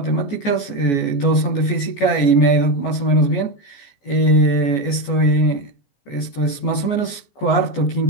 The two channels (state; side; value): late; right; 14 ms